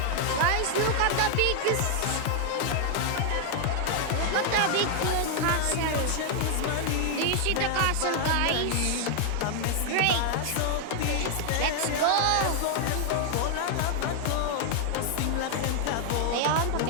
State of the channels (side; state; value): both; different; correlation 0.00